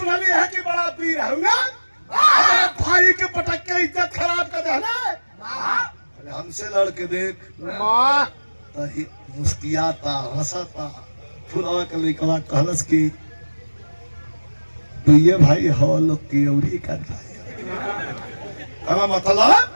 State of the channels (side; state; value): both; inverted; correlation -1.00